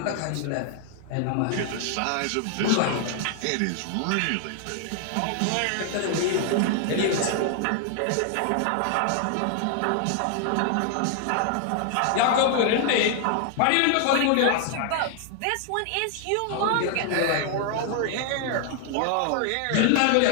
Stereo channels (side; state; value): both; different; correlation 0.00